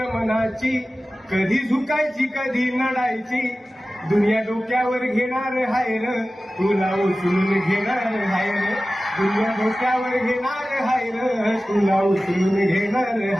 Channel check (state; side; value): normal; both; correlation 0.96